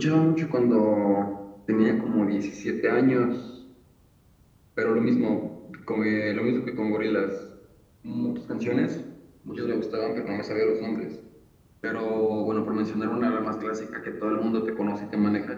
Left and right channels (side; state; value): both; identical; correlation 1.00